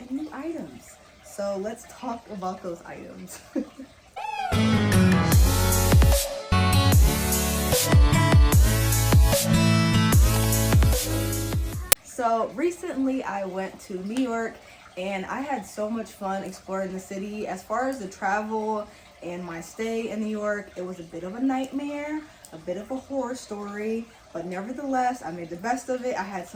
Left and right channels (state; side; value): identical; both; correlation 1.00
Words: new items. So let's talk about those items. So recently I went to New York and I had so much fun exploring the city. As far as the travel and my stay in New York, it was a bit of a nightmare, a bit of a horror story, but nevertheless, I made the best of it. I had